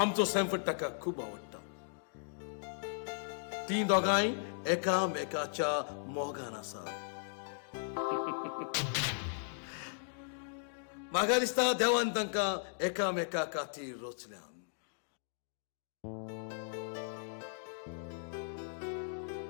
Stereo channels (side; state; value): right; silent; digital silence